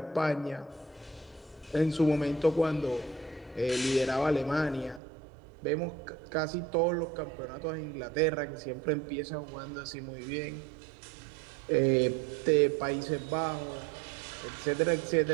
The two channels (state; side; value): drops out; left; at 5.0 s